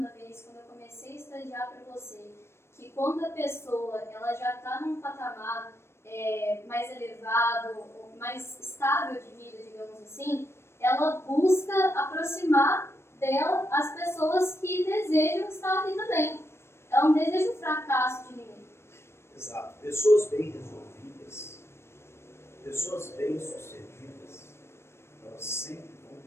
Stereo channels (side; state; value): right; late; 0.12 ms